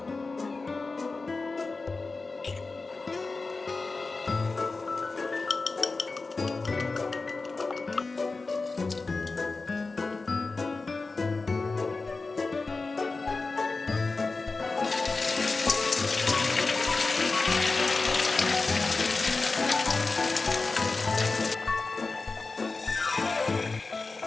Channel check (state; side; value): quieter; right; 3.8 dB